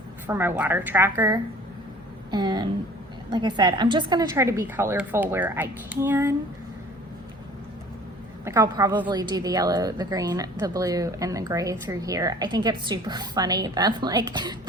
for my water tracker. And like I said, I'm just gonna try to be colorful where I can. Like I'll probably do the yellow, the green, the blue, and the gray through here. I think it's super funny that like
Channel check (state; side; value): normal; both; correlation 0.48